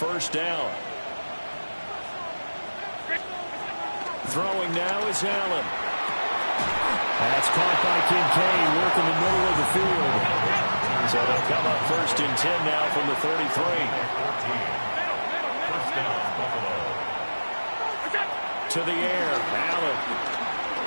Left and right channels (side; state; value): both; inverted; correlation -1.00